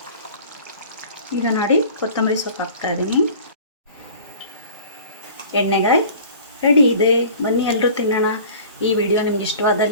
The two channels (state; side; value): inverted; both; correlation -0.44